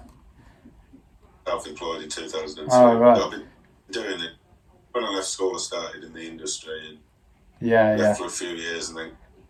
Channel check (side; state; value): both; identical; correlation 1.00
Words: self-employed in Oh 2003. right. But I've been doing it. When I left school, I started in the industry and Yeah, left yeah. for a few years and then